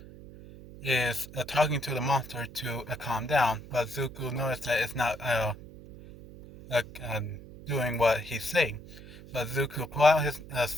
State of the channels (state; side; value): noise; right; hum, 17 dB below the sound